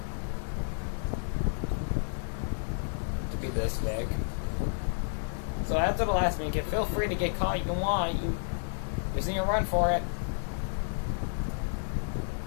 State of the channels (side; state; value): right; silent; digital silence